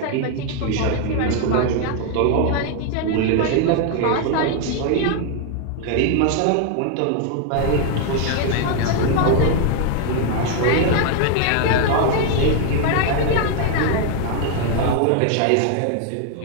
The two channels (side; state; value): both; different; correlation 0.00